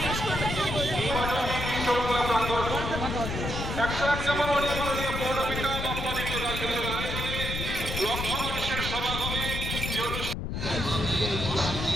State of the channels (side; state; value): left; noise; rumble, 4 dB below the sound